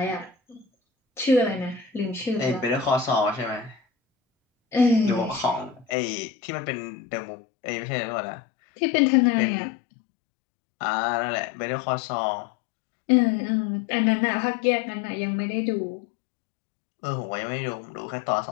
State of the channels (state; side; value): drops out; right; at 5.9 s